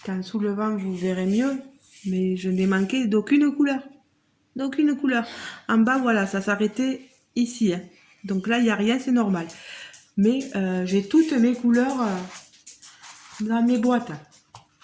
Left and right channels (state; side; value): identical; both; correlation 1.00